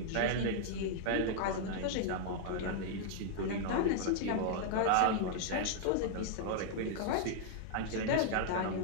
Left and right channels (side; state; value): both; different; correlation -0.01